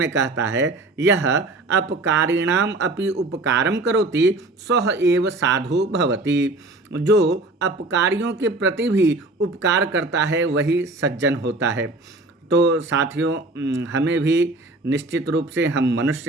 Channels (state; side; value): quieter; left; 3.0 dB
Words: कहता है, यह अपकारिणाम अपि उपकारम करोति सह एव साधु भवति। जो अपकारियों के प्रति भी उपकार करता है वही सज्जन होता है। तो साथियों, हमें भी निश्चित रूप से हम